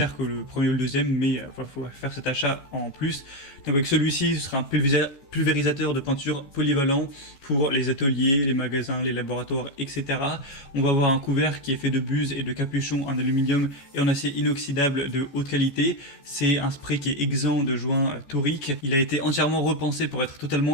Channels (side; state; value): right; late; 14 ms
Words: que le premier ou le deuxième, mais il faut faire cet achat en plus. Donc avec celui-ci, ce sera un pulvérisateur de peinture polyvalent pour les ateliers, les magasins, les laboratoires, etc. On va avoir un couvert qui est fait de buse et de capuchon en aluminium et en acier inoxydable de haute qualité. C'est un spray qui est exempt de joints toriques. Il a été entièrement repensé pour être